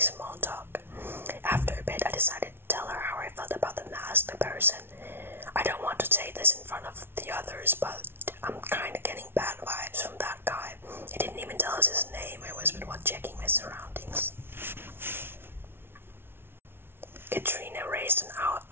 small talk. After a bit, I decided to tell her how I felt about the masked person. I don't want to say this in front of the others, but I'm kinda getting bad vibes from that guy. He didn't even tell us his name, I whispered while checking my surroundings. Katrina raised an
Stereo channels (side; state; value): left; late; 0.11 ms